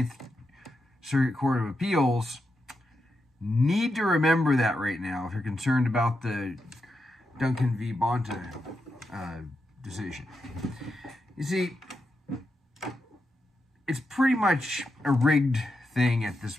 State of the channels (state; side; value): normal; both; correlation 0.86